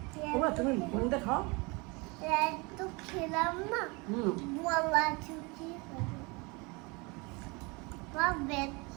বাবা তুমি কোনটা খাও? একটু খেলাম না, গলা শুকিয়ে গেল। বা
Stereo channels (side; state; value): left; quieter; 27.9 dB